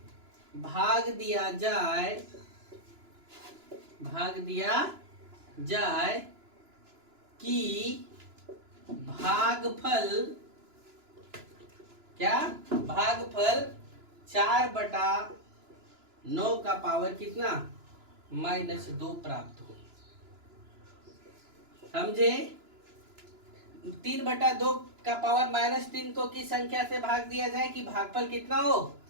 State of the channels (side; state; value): left; late; 2.9 ms